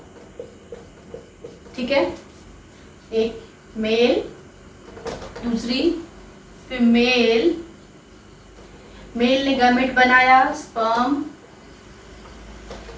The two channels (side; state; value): both; identical; correlation 1.00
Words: ठीक है, एक मेल, दूसरी फीमेल। मेल ने गैमेट बनाया स्पर्म,